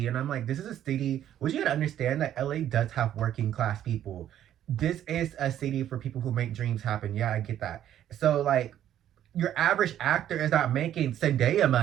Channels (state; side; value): quieter; left; 11.2 dB